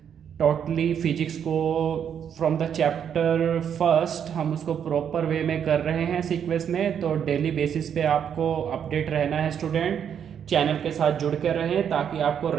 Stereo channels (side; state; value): left; quieter; 8.3 dB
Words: टोटली फिजिक्स को फ्रॉम द चैप्टर फर्स्ट हम उसको प्रॉपर वे में कर रहे हैं सीक्वेंस में। तो डेली बेसिस पे आपको अपडेट रहना है स्टूडेंट, चैनल के साथ जुड़ कर रहें ताकि आपको